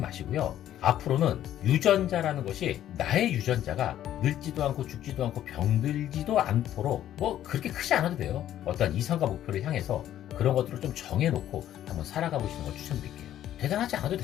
앞으로는 유전자라는 것이 나의 유전자가 늙지도 않고 죽지도 않고 병들지도 않도록 뭐 그렇게 크지 않아도 돼요. 어떤 이상과 목표를 향해서 그런 것들을 좀 정해놓고 한번 살아가 보시는 걸 추천드릴게요. 대단하지 않아도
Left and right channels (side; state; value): right; quieter; 11.8 dB